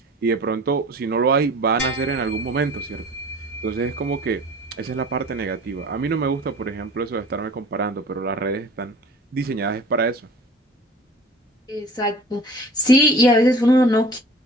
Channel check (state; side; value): normal; both; correlation 0.44